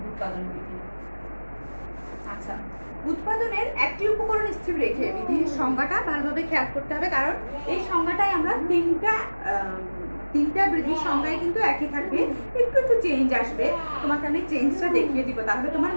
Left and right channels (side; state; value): both; inverted; correlation -1.00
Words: উৎপাদন বিধি। আচ্ছা, উৎপাদনের একটি উপকরণ স্থির রেখে বিধির সংজ্ঞাটা ভালোভাবে খেয়াল করতে হবে, কারণ এই সংজ্ঞাটাই আমরা তিনটা বিধির সংজ্ঞায় কিন্তু একই থাকবে, একটু একটু চেঞ্জ আসবে। তোমাকে আমি চেঞ্জটা দেখিয়ে দিব, তাহলে তোমার